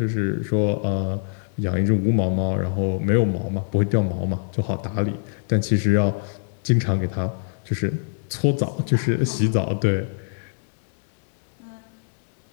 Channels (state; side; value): silent; right; 63 dB below the other